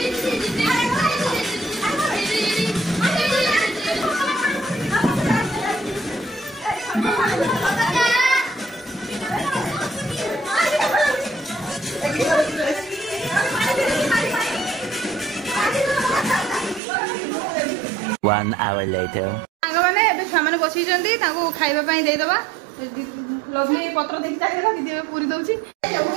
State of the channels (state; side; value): drops out; left; at 16.8 s